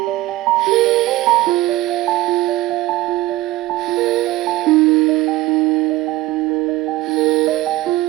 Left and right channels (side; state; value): left; quieter; 17.4 dB